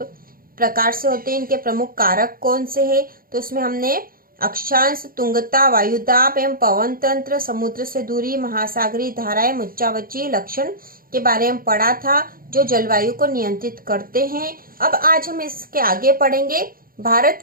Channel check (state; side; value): late; left; 0.42 ms